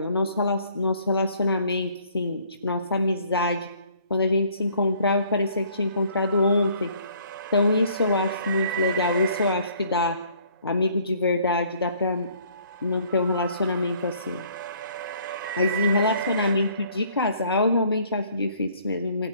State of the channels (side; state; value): both; inverted; correlation -0.60